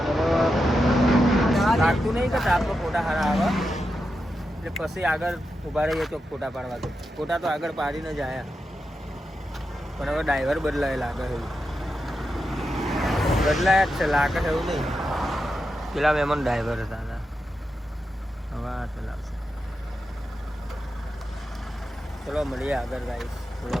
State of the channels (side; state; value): both; normal; correlation 0.88